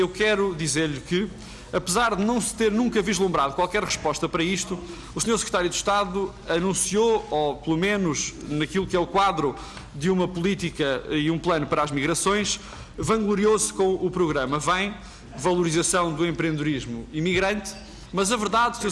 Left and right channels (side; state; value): both; identical; correlation 1.00